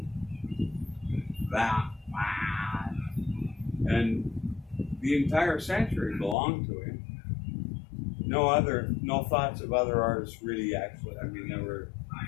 that. And the entire century belonged to him. No thoughts of other artists really actually. I mean, there were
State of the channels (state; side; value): drops out; right; at 6.4 s